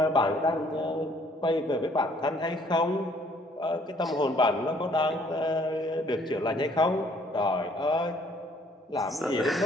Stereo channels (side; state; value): both; normal; correlation 0.62